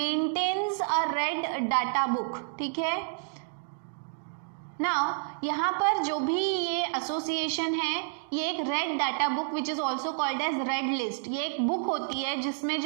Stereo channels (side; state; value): left; silent; digital silence